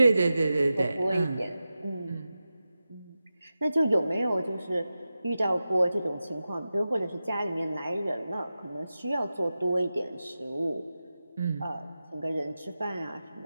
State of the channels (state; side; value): inverted; both; correlation -0.93